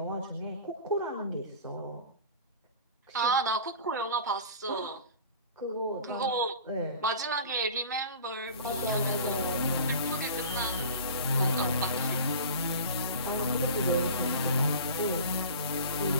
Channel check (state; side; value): inverted; both; correlation -0.38